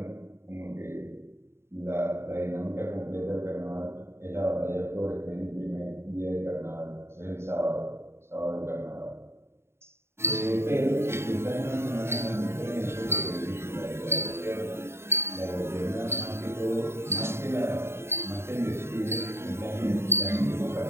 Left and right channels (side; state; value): left; late; 0.12 ms